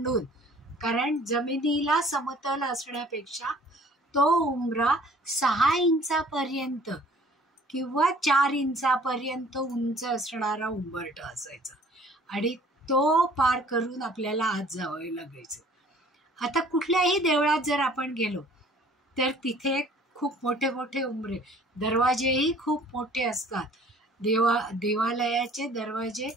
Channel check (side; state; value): both; normal; correlation 0.54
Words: कारण जमिनीला समतल असण्यापेक्षा तो उंबरा 6 इंचापर्यंत किंवा 4 इंचापर्यंत उंच असणारा उंबरठा असायचा आणि तो पार करून आपल्याला आत जावं लागायचं. आता कुठल्याही देवळात जर आपण गेलो तर तिथे खूप मोठे मोठे उंबरे, दरवाजेही खूप मोठे असतात. देवालयाचे दरवाजे